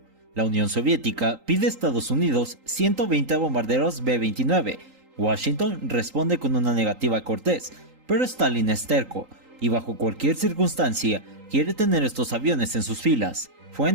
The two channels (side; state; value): left; late; 3.8 ms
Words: La Unión Soviética pide a Estados Unidos 120 bombarderos B-29. Washington responde con una negativa cortés, pero Stalin es terco y bajo cualquier circunstancia quiere tener estos aviones en sus filas. Fue